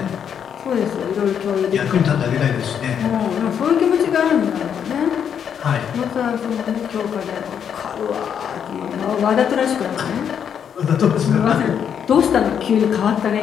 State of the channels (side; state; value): right; quieter; 8.1 dB